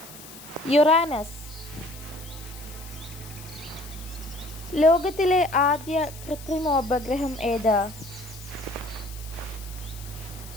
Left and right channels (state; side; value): noise; left; hiss, 16 dB below the sound